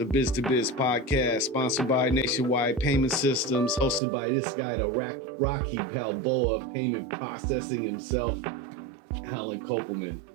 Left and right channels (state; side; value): drops out; left; at 4.0 s